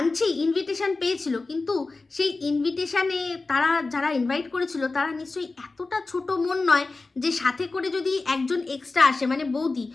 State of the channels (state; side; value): quieter; right; 3.6 dB